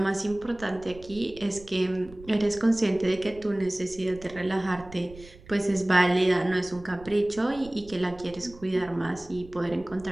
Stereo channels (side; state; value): right; noise; rumble, 20 dB below the sound